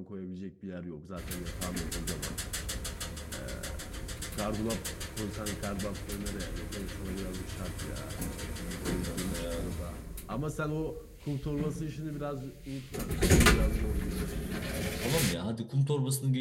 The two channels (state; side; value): identical; both; correlation 1.00